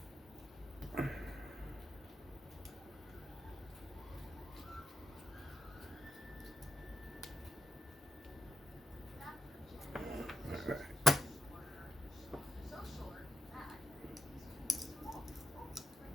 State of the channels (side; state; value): both; normal; correlation 0.85